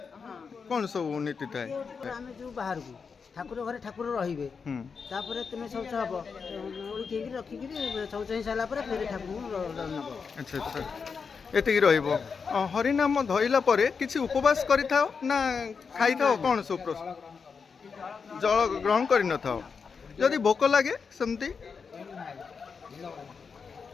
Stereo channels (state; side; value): quieter; right; 5.6 dB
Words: କ'ଣ ସବୁ ନୀତି ଥାଏ? ଆମେ ଯେଉଁ ବାହାରକୁ ଠାକୁର ଘରେ ଠାକୁର ରହିବେ, ତାପରେ ତୁମେ ଶୌଚ ହବ, ଓଳିକି ରଖିକିରି ଶୌଚ ହେଇସାରିଲା ପରେ ଫେରେ ଠାକୁରଙ୍କୁ ନେବ। ଆଚ୍ଛା ଆଚ୍ଛା, ଏତିକି ରହିବ। ହରିନାମ ଧଇଲା ପରେ କିଛି ଉପବାସ କରିଥାଅ ନା ଖାଇଥାଅ? କ'ଣ ସବୁ ଜଳ ଗ୍ରହଣ କରିନଥାଅ? ଯଦି ଭୋକ ଲାଗେ ସେମିତି